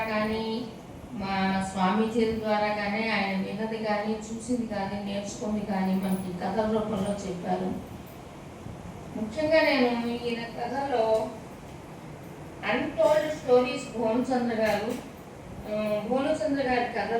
కానీ, మా స్వామీజీల ద్వారా కానీ, ఆయన విన్నది కానీ, చూసింది కానీ, నేర్చుకుంది కానీ మనకి కథల రూపంలో చెప్పారు. ముఖ్యంగా నేను ఈయన కథలో అన్టోల్డ్ స్టోరీస్ భోమచంద్ర గారి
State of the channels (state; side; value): identical; both; correlation 1.00